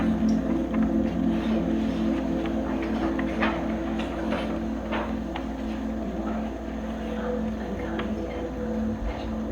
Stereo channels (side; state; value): both; identical; correlation 1.00